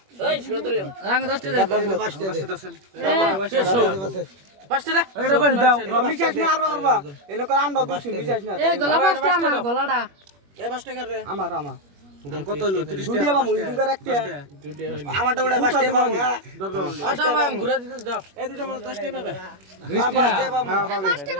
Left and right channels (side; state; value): left; late; 21 ms